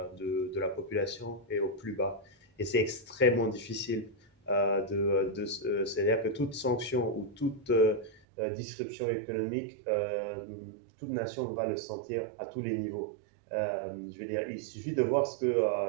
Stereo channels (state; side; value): drops out; left; at 8.2 s